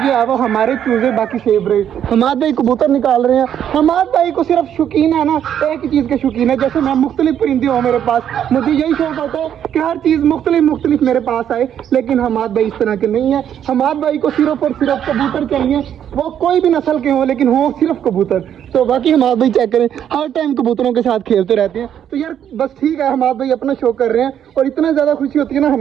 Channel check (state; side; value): quieter; left; 9.6 dB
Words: है वो हमारे चूज़े बाकी सेफ रहे। हमाद भाई कबूतर निकाल रहे हैं। हमाद भाई को सिर्फ शौकीन है ना एक ही चीज़ के शौकीन है, जैसे मैं मुख्तलिफ परिंदे हो मेरे पास, मुझे यही शौक होता है कि हर चीज़ मुख्तलिफ मेरे पास आए। लेकिन हमाद भाई इस तरह के नहीं है। हमाद भाई को सिर्फ और सिर्फ कबूतर चाहिए, वो कोई भी नस्ल के हो लेकिन हो सिर्फ कबूतर। तो बाकी हमाद भाई चेक करें, हर टाइम कबूतरों के साथ खेलते रहते हैं। तो यार बस ठीक है, हमाद भाई अपना शौक कर रहे हैं और इतना ज़्यादा खुशी होती है ना,